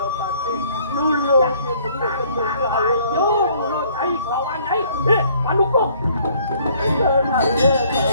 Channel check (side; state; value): both; inverted; correlation -0.60